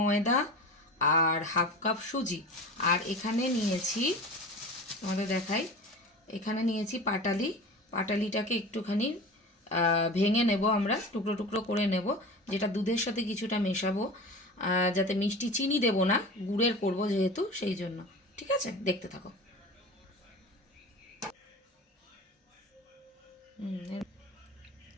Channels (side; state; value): both; normal; correlation 0.34